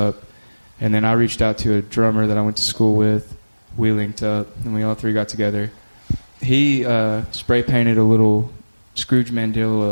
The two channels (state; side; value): inverted; both; correlation -1.00